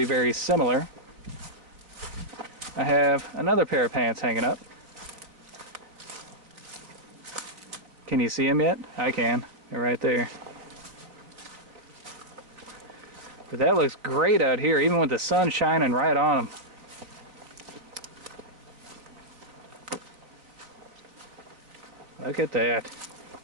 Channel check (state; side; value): late; left; 3.8 ms